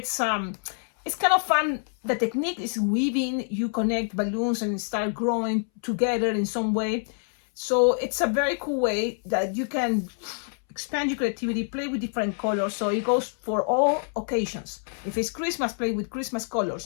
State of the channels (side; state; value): right; silent; 61 dB below the other